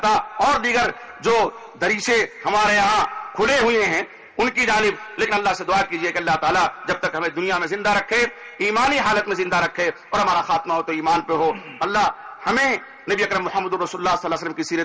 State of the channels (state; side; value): identical; both; correlation 1.00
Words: اور دیگر جو دریچے ہمارے یہاں کھلے ہوئے ہیں ان کی جانب. لیکن اللہ سے دعا کیجئے کہ اللہ تعالیٰ جب تک ہمیں دنیا میں زندہ رکھے، ایمانی حالت میں زندہ رکھے، اور ہمارا خاتمہ ہو تو ایمان پہ ہو. اللہ ہمیں نبی اکرم محمد رسول اللہ صلی اللہ علیہ وسلم کی